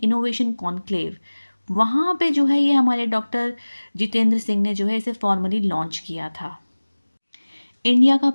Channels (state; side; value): inverted; both; correlation -1.00